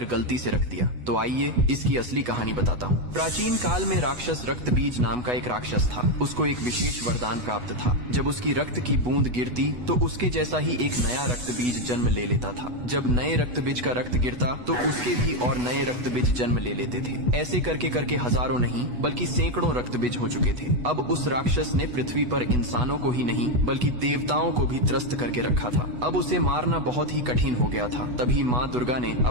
गलती से रख दिया? तो आइए इसकी असली कहानी बताता हूँ। प्राचीन काल में राक्षस रक्तबीज नाम का एक राक्षस था। उसको एक विशेष वरदान प्राप्त था। जब उसकी रक्त की बूंद गिरती तो उसके जैसा ही एक नया रक्तबीज जन्म ले लेता था। जब नए रक्तबीज का रक्त गिरता तो उसके भी और नए रक्तबीज जन्म ले लेते थे। ऐसे करके करके हजारों नहीं बल्कि सैकड़ों रक्तबीज हो चुके थे। अब उस राक्षस ने पृथ्वी पर इंसानों को ही नहीं बल्कि देवताओं को भी त्रस्त करके रखा था। अब उसे मारना बहुत ही कठिन हो गया था। तभी माँ दुर्गा ने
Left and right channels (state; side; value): late; left; 8.1 ms